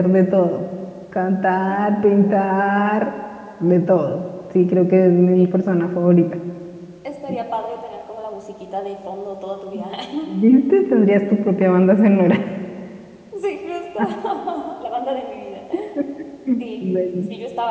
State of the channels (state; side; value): identical; both; correlation 1.00